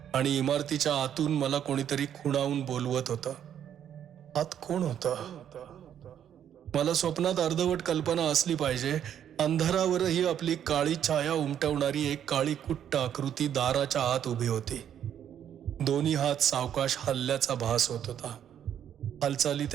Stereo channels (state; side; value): quieter; left; 9.6 dB